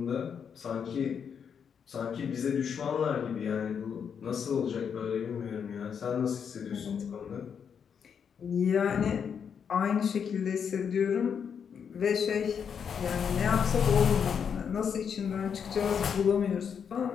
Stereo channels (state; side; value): quieter; right; 7.2 dB